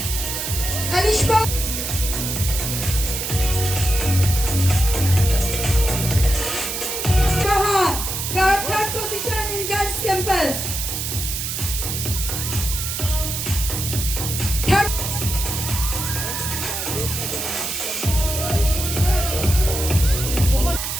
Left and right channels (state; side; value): noise; right; hiss, 3 dB below the sound